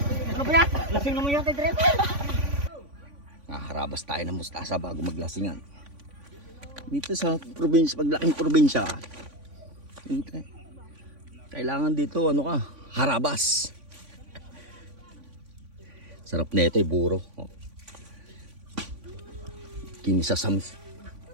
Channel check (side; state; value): left; late; 3.5 ms